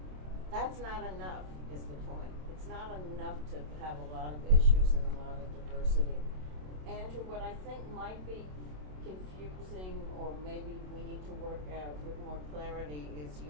that's not enough, is the point. It's not enough to have a lot of issues and a lot of diversity. Andrew, what I think might be confusing, or maybe we need to work out with more clarity, is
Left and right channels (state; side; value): late; left; 27 ms